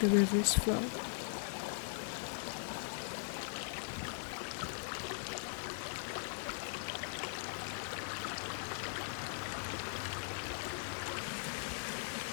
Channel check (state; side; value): silent; right; digital silence